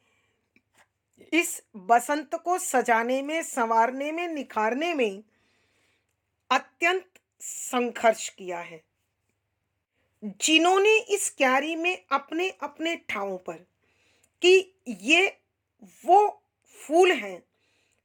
इस बसंत को सजाने में, संवारने में, निखारने में अत्यंत संघर्ष किया है। जिन्होंने इस क्यारी में अपने अपने ठावों पर, कि ये वो फूल हैं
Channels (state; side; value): identical; both; correlation 1.00